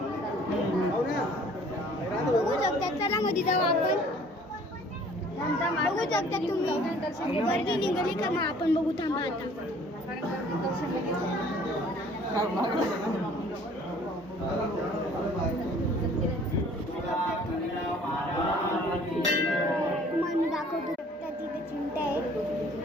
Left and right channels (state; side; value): normal; both; correlation 0.54